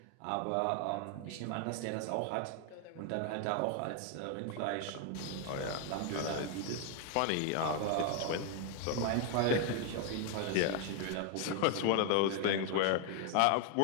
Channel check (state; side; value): different; both; correlation 0.00